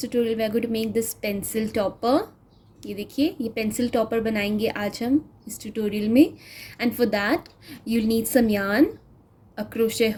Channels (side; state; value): both; identical; correlation 1.00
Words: we are going to make this pencil topper. ये देखिए ये pencil topper बनाएंगे आज हम इस tutorial में. And for that you'll need some yarn, a crochet